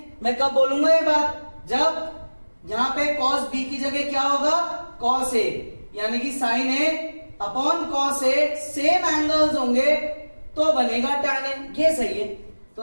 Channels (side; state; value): both; inverted; correlation -1.00